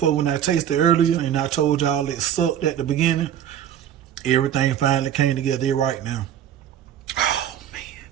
when I tasted earlier, and I told y'all it sucked at the beginning, everything finally came together right now. Oh man,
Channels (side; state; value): left; quieter; 10.0 dB